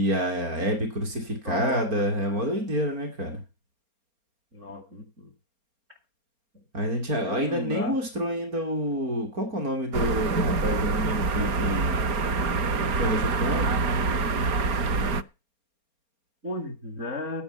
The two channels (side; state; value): left; late; 4.3 ms